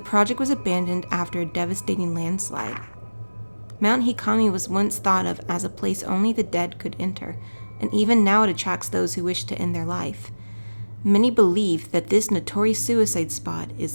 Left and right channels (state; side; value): inverted; both; correlation -1.00